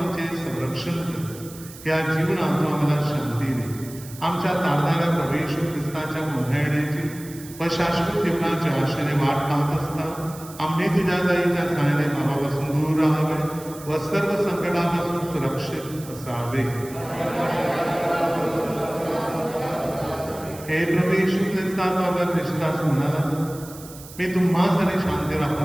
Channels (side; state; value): right; noise; hiss, 17 dB below the sound